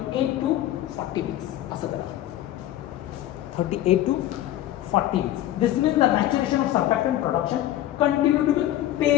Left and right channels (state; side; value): quieter; right; 13.5 dB